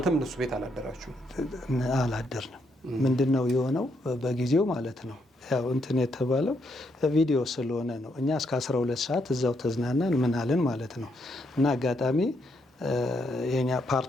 እነሱ ቤት አላደራችሁም? አላደርንም። ምንድነው የሆነው በጊዜው ማለት ነው። ያው እንትን የተባለው ቪዲዮ ስለሆነ ነው። እኛ እስከ 12 ሰዓት እዛው ተዝናናን ምናልን ማለት ነው። እና አጋጣሚ የኛ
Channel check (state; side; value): normal; both; correlation 0.77